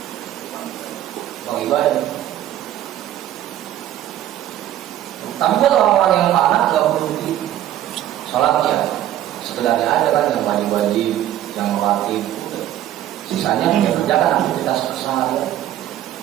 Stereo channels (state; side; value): quieter; left; 12.5 dB